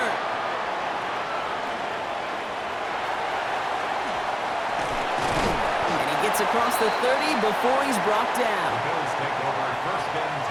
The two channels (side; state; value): both; identical; correlation 1.00